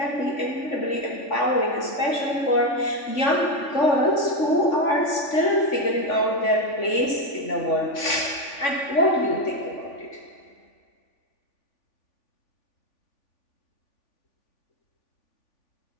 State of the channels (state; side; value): late; right; 3.5 ms